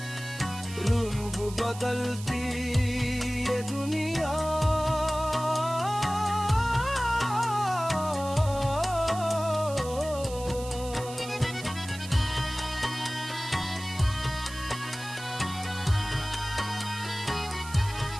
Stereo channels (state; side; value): noise; right; hiss, 14 dB below the sound